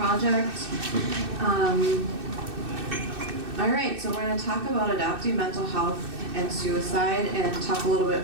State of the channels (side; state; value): left; late; 2.6 ms